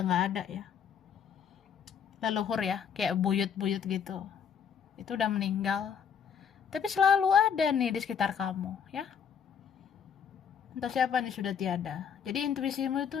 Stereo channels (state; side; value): quieter; right; 7.6 dB